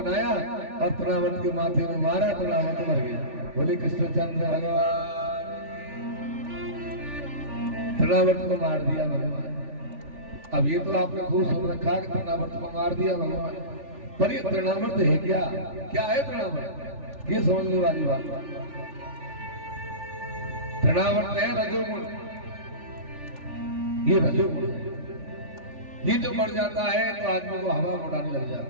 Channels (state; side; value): late; left; 3.4 ms